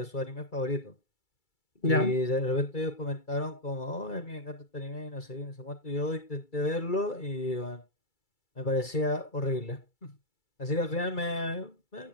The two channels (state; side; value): late; right; 2.3 ms